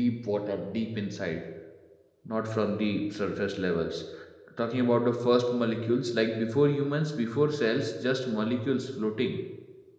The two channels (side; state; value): both; identical; correlation 1.00